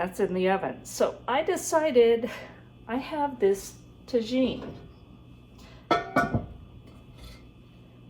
in the oven. So I decided I have this tagine,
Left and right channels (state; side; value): identical; both; correlation 1.00